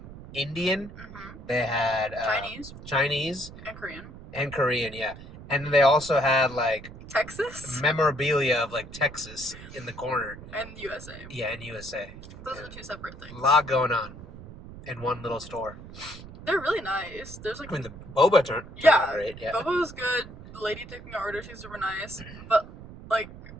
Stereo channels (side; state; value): right; noise; rumble, 15 dB below the sound